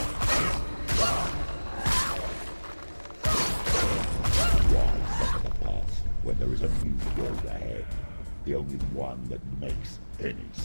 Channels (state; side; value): inverted; both; correlation -1.00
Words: When there is a new road ahead, the only one that makes any